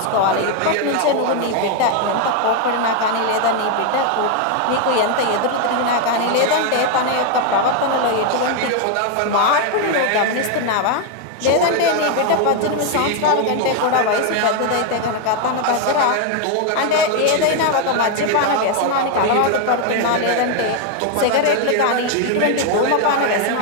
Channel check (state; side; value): different; both; correlation 0.01